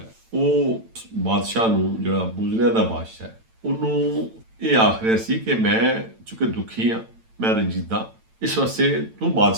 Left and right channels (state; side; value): late; left; 9.0 ms